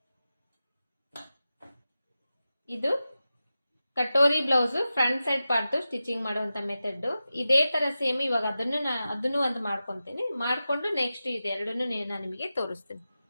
ಇದು katori blouse front side part stitching ಮಾಡುವಂತ ಮೆಥಡ್. ಇದೇ ತರ ಸೇಮ್ ಇವಾಗ ಅದನ್ನು ಒಂದು ಮಾಡ್ಕೊಂತೀನಿ. ಮಾಡ್ಕೊಂಡು ನೆಕ್ಸ್ಟ್ ಇದೆರಡನ್ನು ನಾನು ನಿಮಗೆ ತೋರಿಸ್ತೀನಿ.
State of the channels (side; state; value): both; inverted; correlation -0.93